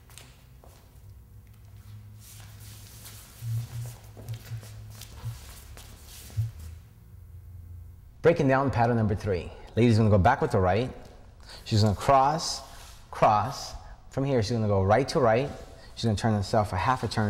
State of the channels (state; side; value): identical; both; correlation 1.00